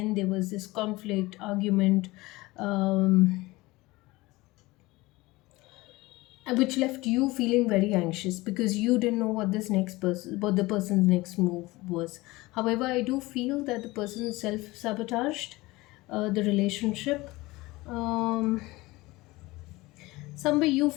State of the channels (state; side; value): quieter; right; 20.8 dB